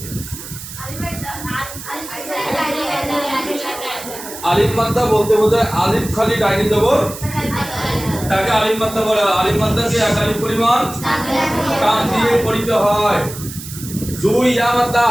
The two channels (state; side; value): noise; right; hiss, 12 dB below the sound